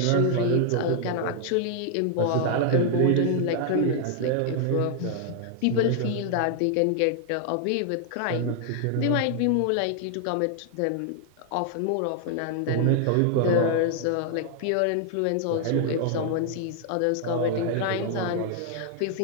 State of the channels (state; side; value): different; both; correlation 0.00